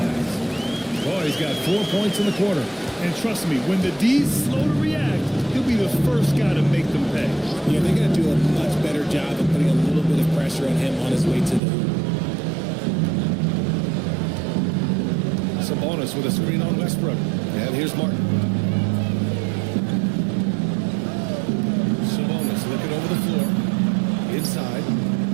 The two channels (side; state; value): left; drops out; at 11.6 s